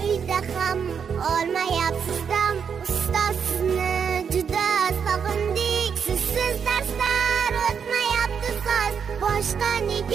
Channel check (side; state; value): left; quieter; 6.9 dB